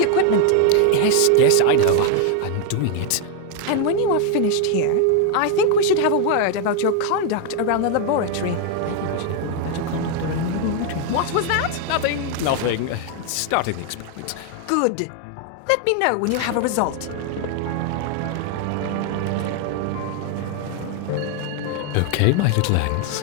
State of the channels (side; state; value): both; different; correlation 0.00